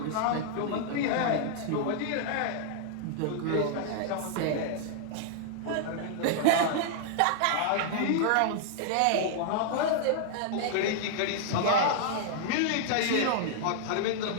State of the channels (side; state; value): both; different; correlation -0.01